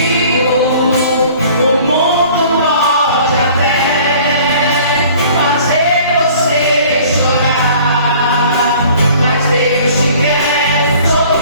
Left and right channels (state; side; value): inverted; both; correlation -0.50